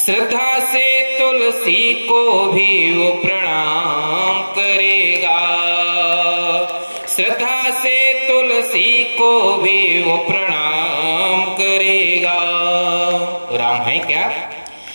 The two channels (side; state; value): both; inverted; correlation -1.00